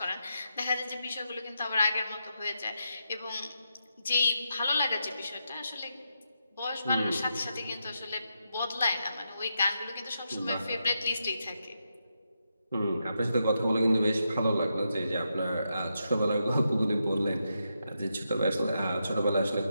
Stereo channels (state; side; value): inverted; both; correlation -0.84